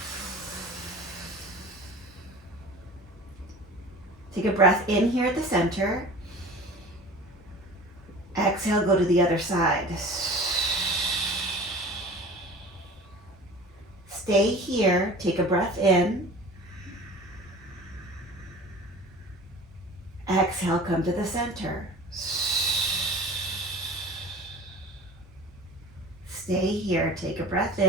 Take a breath in here at the center. Exhale, go to the other side. Stay here, take a breath in. Exhale, come to the center. Stay here, take a breath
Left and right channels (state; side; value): normal; both; correlation 0.40